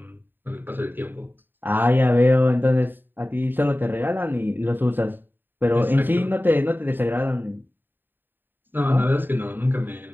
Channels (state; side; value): late; left; 0.093 ms